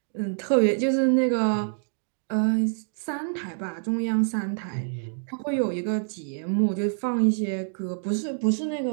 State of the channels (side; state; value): left; silent; digital silence